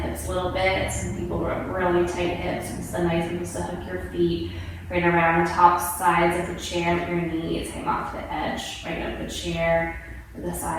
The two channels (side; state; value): both; identical; correlation 1.00